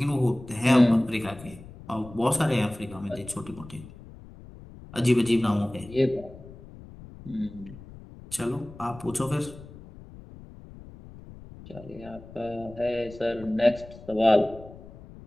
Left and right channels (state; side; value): noise; left; rumble, 18 dB below the sound